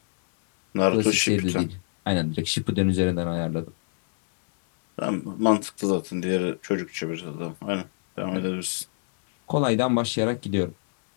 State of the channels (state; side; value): silent; right; 62 dB below the other